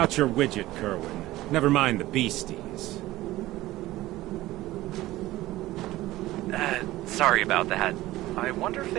your widget, Kerwin. Never mind the beasties. Sorry about that. I wonder if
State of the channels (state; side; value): quieter; left; 16.9 dB